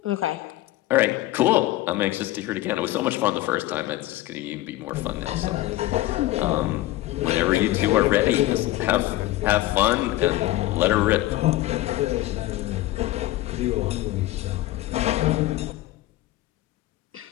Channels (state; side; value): quieter; right; 16.6 dB